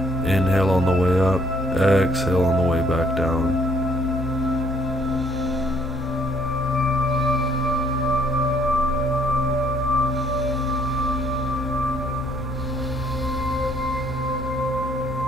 Inhale on the way up. Exhale on the way back down.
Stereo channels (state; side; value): normal; both; correlation 0.64